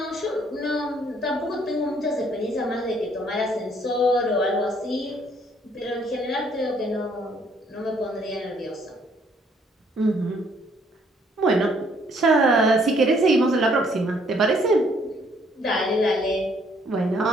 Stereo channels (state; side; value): normal; both; correlation 0.65